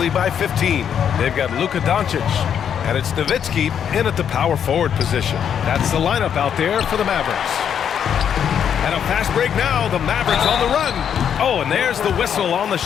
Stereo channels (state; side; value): quieter; right; 8.4 dB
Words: by 15. They've got Luka Doncic, and it's Nowitzki in at the power forward position. That's the lineup out there for the Mavericks. And a fast break now. The Mavericks on the run. Oh, and there's the whistle on the